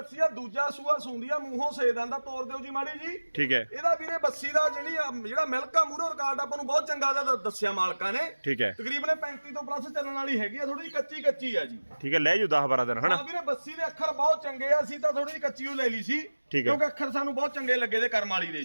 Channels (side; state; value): both; inverted; correlation -1.00